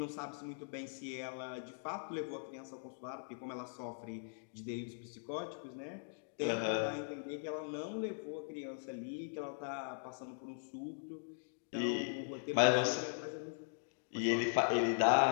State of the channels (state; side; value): silent; right; digital silence